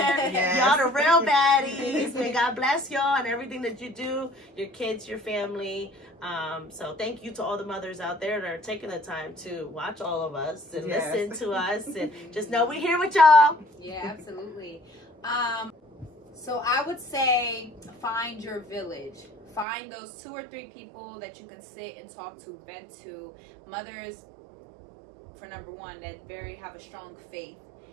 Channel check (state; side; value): drops out; left; at 19.7 s